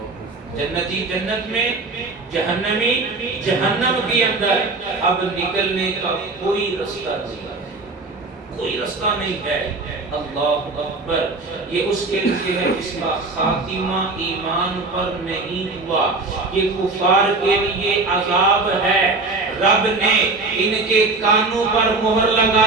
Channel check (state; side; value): quieter; left; 3.5 dB